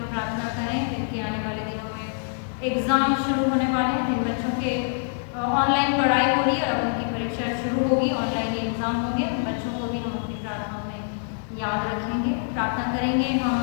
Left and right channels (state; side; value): silent; right; 61 dB below the other